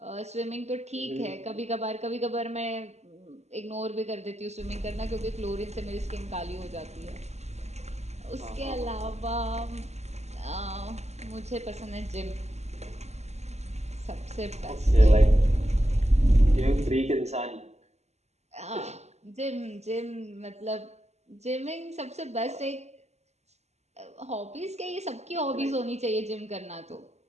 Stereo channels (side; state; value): left; late; 0.32 ms